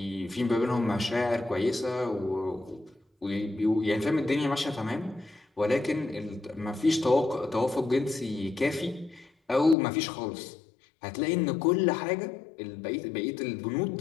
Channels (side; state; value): right; drops out; at 9.8 s